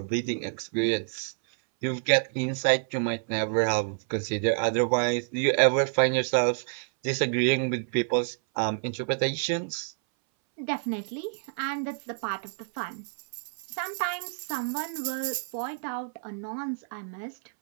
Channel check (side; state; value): left; silent; 59 dB below the other